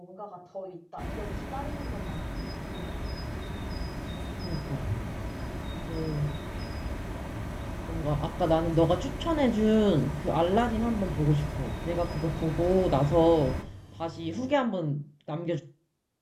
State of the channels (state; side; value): identical; both; correlation 1.00